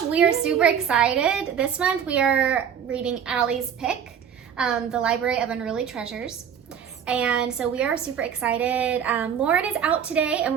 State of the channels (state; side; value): quieter; left; 8.1 dB